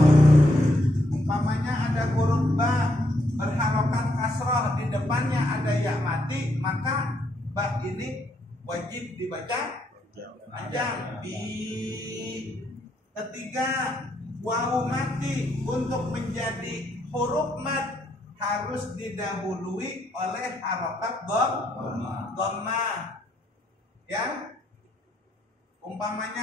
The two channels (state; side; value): normal; both; correlation 0.75